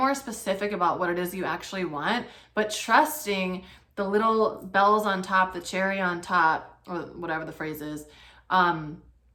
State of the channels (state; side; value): identical; both; correlation 1.00